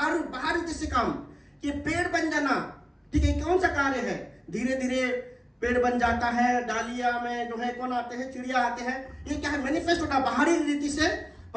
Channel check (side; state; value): both; identical; correlation 1.00